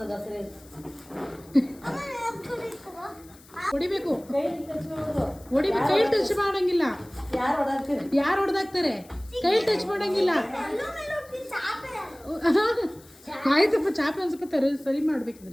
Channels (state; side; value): noise; left; hiss, 25 dB below the sound